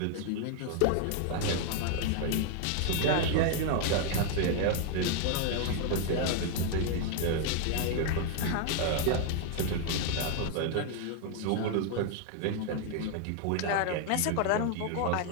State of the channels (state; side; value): different; both; correlation 0.00